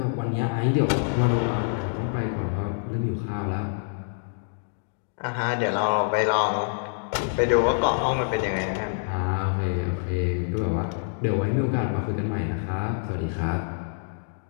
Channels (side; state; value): right; silent; digital silence